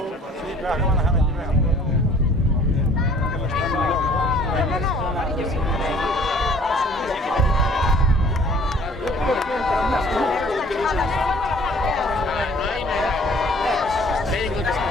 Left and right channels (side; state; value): both; normal; correlation 0.53